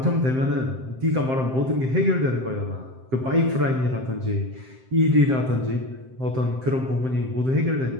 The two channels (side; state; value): left; late; 7.7 ms